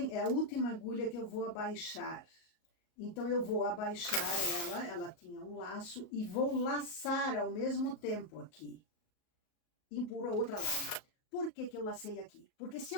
é a última agulha que eu vou abaixar. Então, eu vou abaixar ela tinha um laço, e vou laçar ao mesmo tempo aqui. Empurro a outra lá. Por que que eu lacei aqui? Porque se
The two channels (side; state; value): right; late; 38 ms